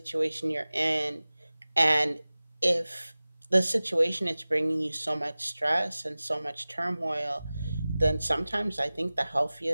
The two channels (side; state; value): both; inverted; correlation -0.98